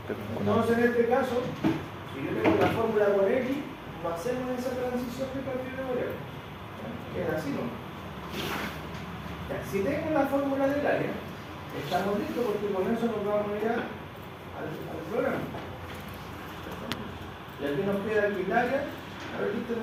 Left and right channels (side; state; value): both; identical; correlation 1.00